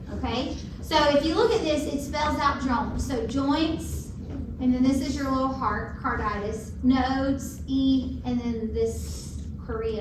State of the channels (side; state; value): both; identical; correlation 1.00